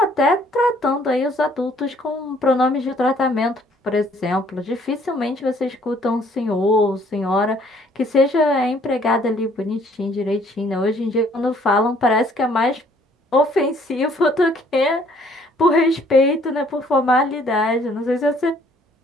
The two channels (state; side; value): normal; both; correlation 0.61